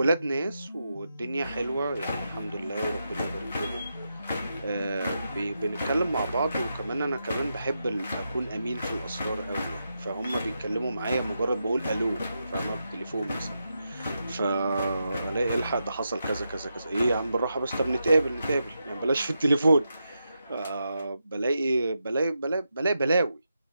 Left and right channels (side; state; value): both; inverted; correlation -0.86